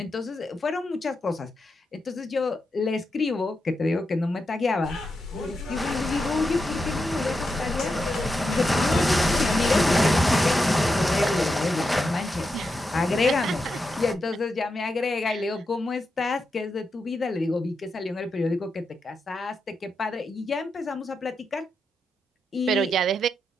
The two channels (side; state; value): both; normal; correlation 0.86